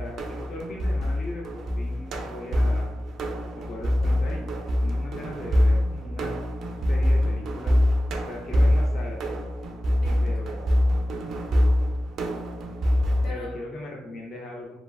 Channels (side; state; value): both; normal; correlation 0.96